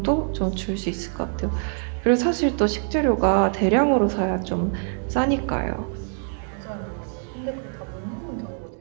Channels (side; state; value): left; silent; 56 dB below the other